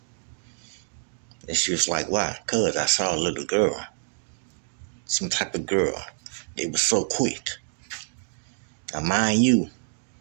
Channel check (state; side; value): silent; left; digital silence